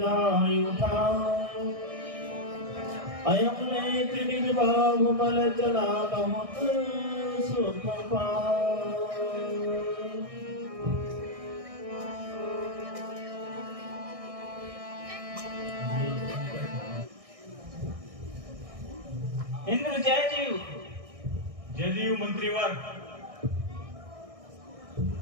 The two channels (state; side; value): late; left; 1.6 ms